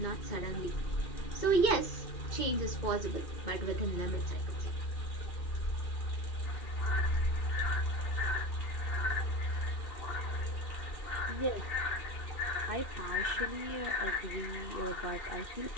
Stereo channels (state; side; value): late; right; 2.6 ms